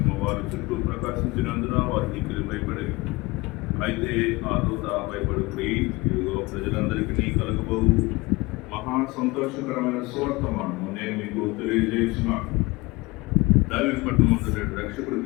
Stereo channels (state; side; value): quieter; right; 23.2 dB